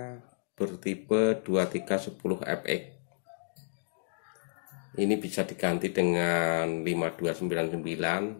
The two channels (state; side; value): silent; right; digital silence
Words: bertipe 2310FX. Ini bisa diganti dengan